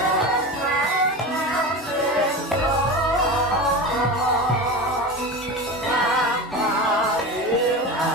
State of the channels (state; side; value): normal; both; correlation 0.27